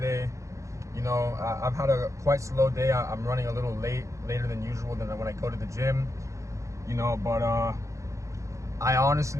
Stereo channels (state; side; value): late; left; 0.15 ms